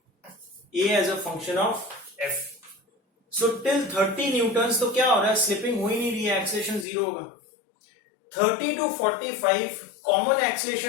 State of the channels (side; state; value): right; drops out; at 6.9 s